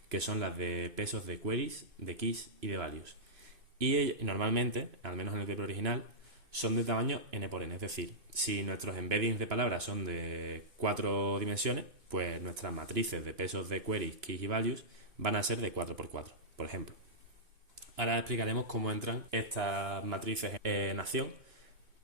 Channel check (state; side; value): late; left; 2.5 ms